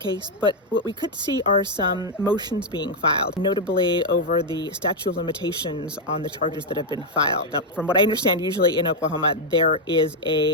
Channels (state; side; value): normal; both; correlation 0.01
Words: but what we could see are some motions being filed, notably over the statute of limitations on the charges that have been filed. Now, from what I understand, usually in Oklahoma, there is